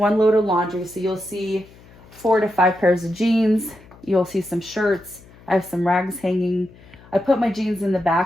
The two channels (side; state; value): left; noise; hum, 24 dB below the sound